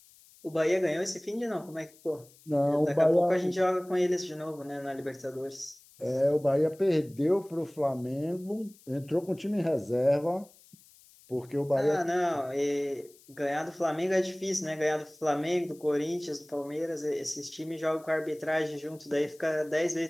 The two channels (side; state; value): left; noise; hiss, 26 dB below the sound